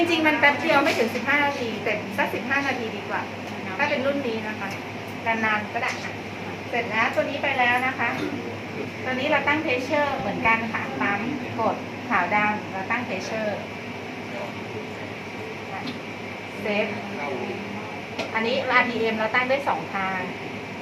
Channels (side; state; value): both; identical; correlation 1.00